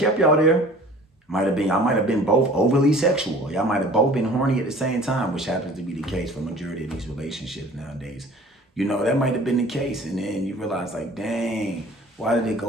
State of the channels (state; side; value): normal; both; correlation 0.47